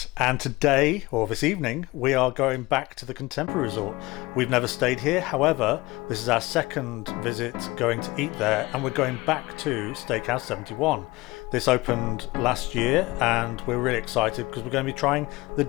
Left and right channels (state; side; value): quieter; right; 21.4 dB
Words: and today, or this evening, we are going back to the Contemporary Resort. We've never stayed here, however, this is our second visit going to eat there, and we're going back to Steakhouse 71. This opened last year, and we're really excited because we're going to be trying the